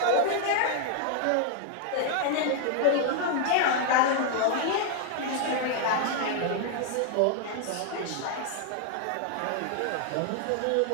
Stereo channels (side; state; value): both; different; correlation 0.00